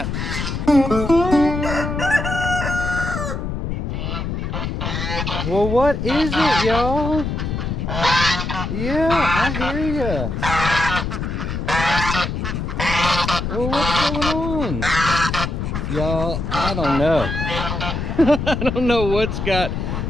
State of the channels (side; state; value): left; noise; rumble, 3 dB below the sound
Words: Well, what is it, y'all? Yeah, I hear ya. Well, what's going on? Y'all, I don't know. I don't know what's got